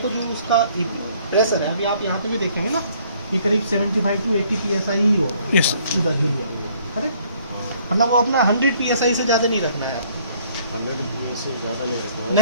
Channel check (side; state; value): both; inverted; correlation -0.62